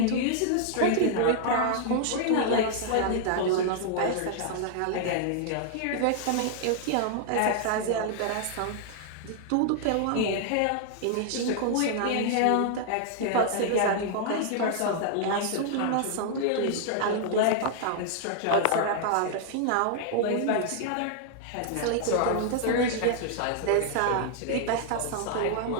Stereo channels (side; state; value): both; different; correlation -0.01